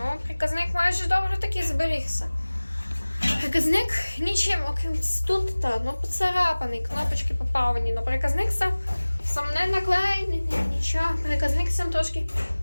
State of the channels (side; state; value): both; inverted; correlation -1.00